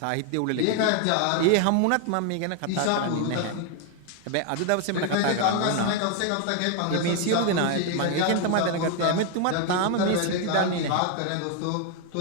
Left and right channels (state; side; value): different; both; correlation 0.00